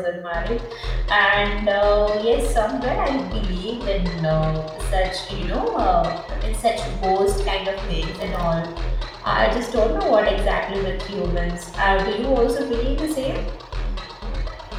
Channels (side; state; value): both; identical; correlation 1.00